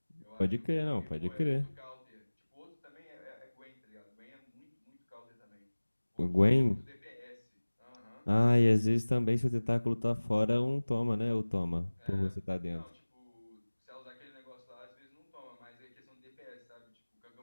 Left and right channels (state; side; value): inverted; both; correlation -1.00